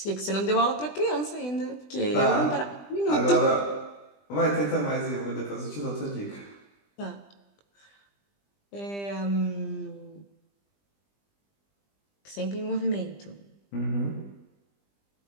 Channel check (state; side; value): late; right; 20 ms